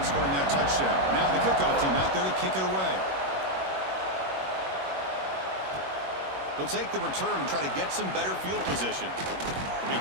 scoring that touchdown. Now the kickoff team out there to kick it away. They'll take the return and try to get some better field position. They'll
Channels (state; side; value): late; left; 21 ms